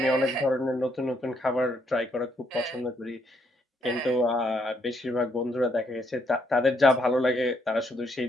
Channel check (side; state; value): both; normal; correlation 0.73